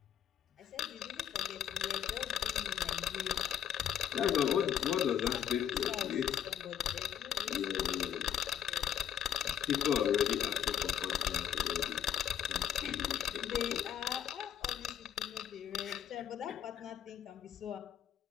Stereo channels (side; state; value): right; quieter; 9.1 dB